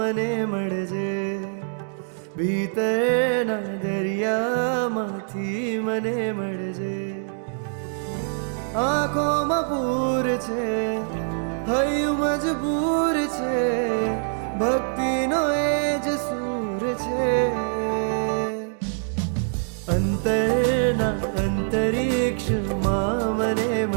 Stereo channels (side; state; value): left; silent; digital silence